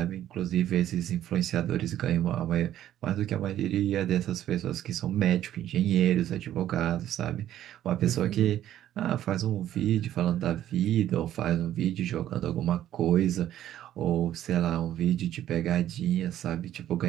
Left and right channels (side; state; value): left; quieter; 12.0 dB